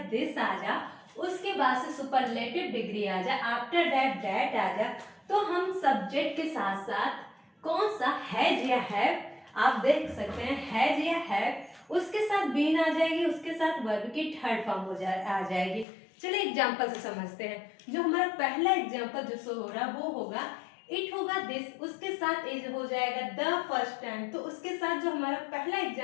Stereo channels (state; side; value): drops out; right; at 15.9 s